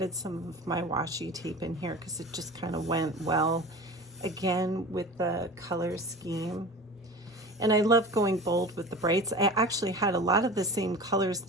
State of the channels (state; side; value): normal; both; correlation 0.35